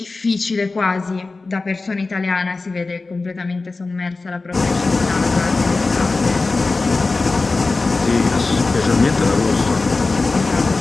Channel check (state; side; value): quieter; right; 3.6 dB